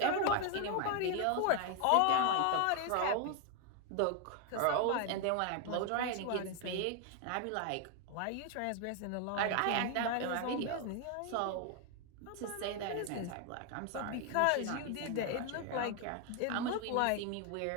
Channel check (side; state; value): both; different; correlation 0.01